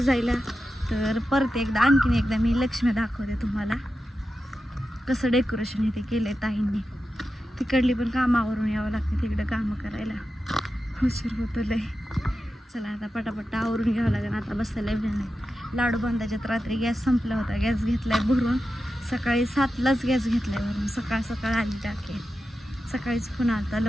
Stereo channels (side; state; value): both; normal; correlation 0.91